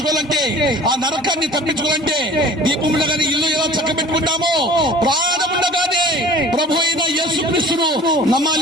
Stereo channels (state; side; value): normal; both; correlation 0.45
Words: ఆ నరకాన్ని తప్పించుకోవాలంటే దీపం ఉండగానే ఇల్లు ఎలా చక్కబెట్టుకుంటామో ప్రాణం ఉండగానే ప్రభు అయిన యేసుక్రీస్తును